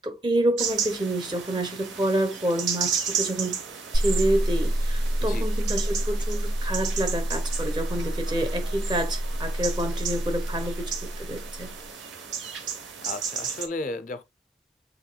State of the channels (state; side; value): normal; both; correlation 0.77